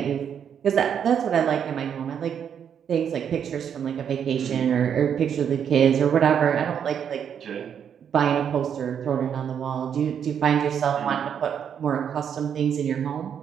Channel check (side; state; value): left; quieter; 8.2 dB